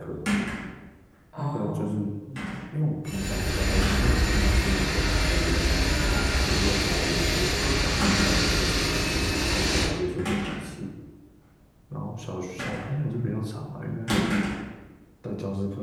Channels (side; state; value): both; identical; correlation 1.00